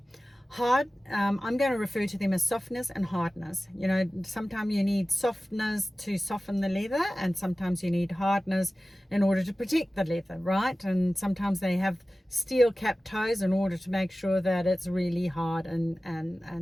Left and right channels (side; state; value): both; normal; correlation 0.96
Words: Hard, I'm going to refer to them as softness and hardness. You know, sometimes you need softness to soften the leather, and sometimes you need hardness in order to protect the leather, right? And sometimes they have steel cap toes in order to make sure that it's really hard